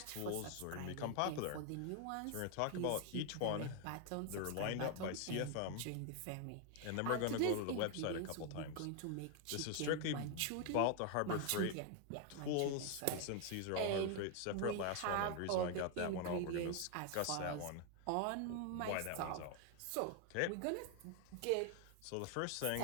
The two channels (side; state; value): both; different; correlation 0.01